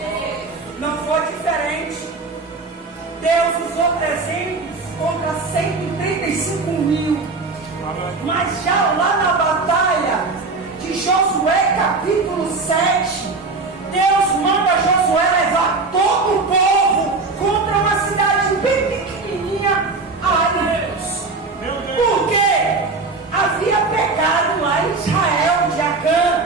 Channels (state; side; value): quieter; left; 3.9 dB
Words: Não foi diferente. Deus usou 300 contra 135 mil. Mas já lá na batalha de Josué capítulo 7, Deus manda Josué levar todo o povo contra uma cidade bem pequenininha. Ai, Deus. Por quê? Havia pecado lá em Israel de